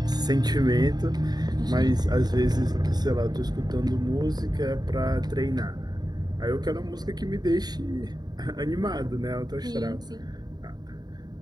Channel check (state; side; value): late; left; 0.20 ms